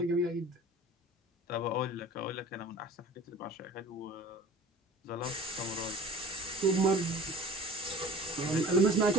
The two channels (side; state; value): both; normal; correlation 0.44